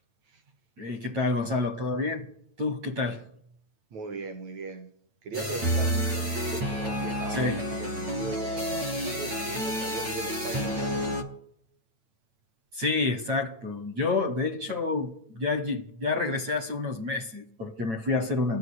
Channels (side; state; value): left; late; 8.9 ms